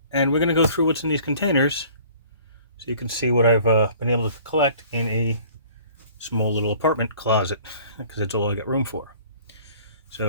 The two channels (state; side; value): inverted; both; correlation -0.51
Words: And we're going to go through what's in these containers so you can see what I've been able to collect in a small little apartment closet, because it's all I got room for.